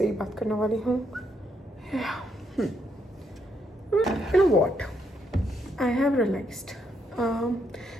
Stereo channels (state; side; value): normal; both; correlation 0.76